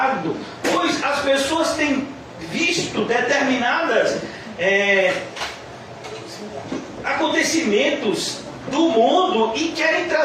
Pois as pessoas têm visto determinadas acontecimentos do mundo e querem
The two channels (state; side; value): identical; both; correlation 1.00